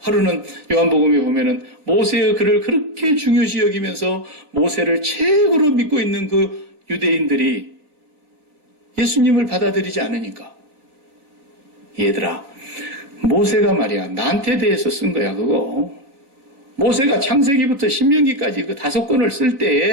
하루는 요한복음에 보면은 모세의 글을 그렇게 중요시 여기면서 모세를 최고로 믿고 있는 그 유대인들이 예수님을 받아들이지 않으니까, 얘들아, 모세가 말이야 나한테 대해서 쓴 거야 그거. 모세가 창세기부터 신명기까지 그 5권을 쓸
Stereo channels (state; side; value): late; left; 3.9 ms